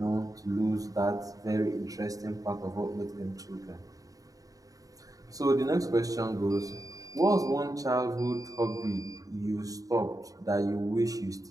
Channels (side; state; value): left; late; 0.17 ms